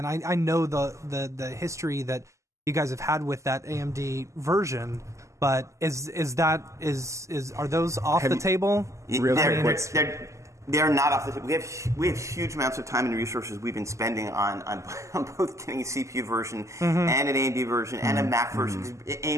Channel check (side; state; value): left; late; 0.15 ms